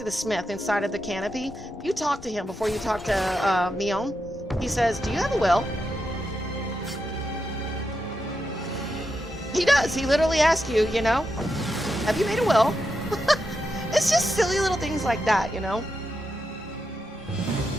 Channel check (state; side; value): normal; both; correlation 0.86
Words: the smith inside of the canopy. You talk to him before you talk to Mion. He says, do you have a will? He does. He literally asks you, you know, have you made a will? It's just silly little things like that, you know?